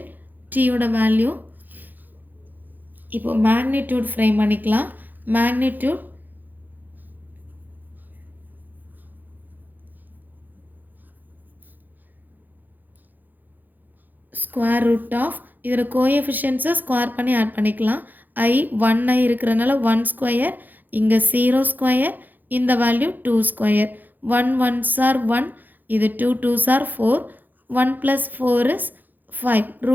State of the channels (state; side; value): late; left; 0.086 ms